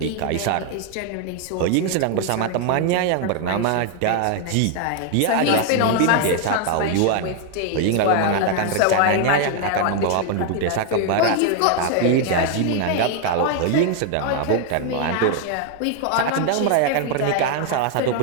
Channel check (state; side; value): different; both; correlation 0.00